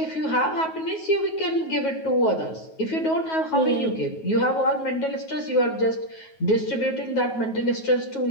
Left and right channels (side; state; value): right; late; 9.3 ms